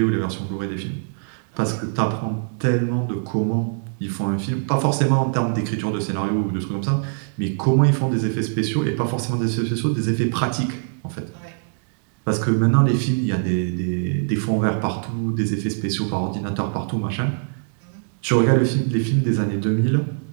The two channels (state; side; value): silent; left; 64 dB below the other